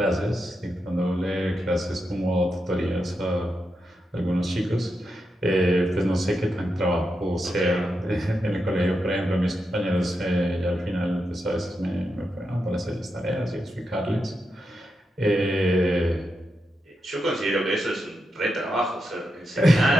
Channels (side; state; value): both; normal; correlation 0.86